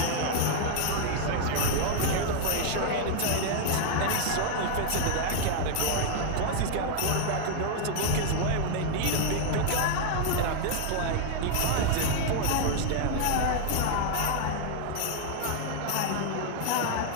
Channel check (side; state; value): both; different; correlation 0.00